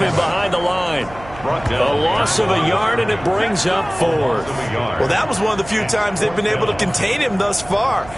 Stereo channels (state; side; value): noise; right; hum, 17 dB below the sound